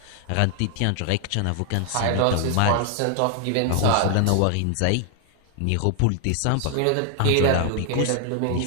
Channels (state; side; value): different; both; correlation 0.00